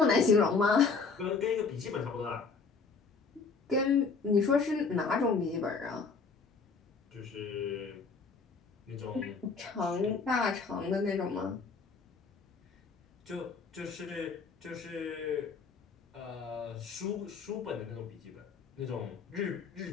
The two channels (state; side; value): quieter; right; 4.8 dB